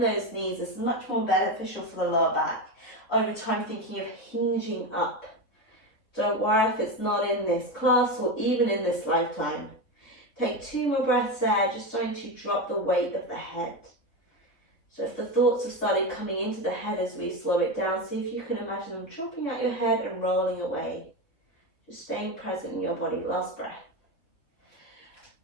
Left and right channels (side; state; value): right; late; 3.6 ms